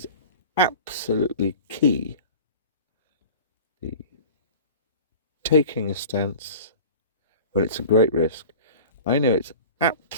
absolutely key. The taking a stance when it's a great risk, I know it's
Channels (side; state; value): both; inverted; correlation -0.39